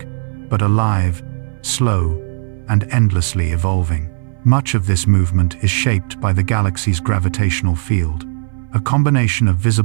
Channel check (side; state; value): left; silent; 61 dB below the other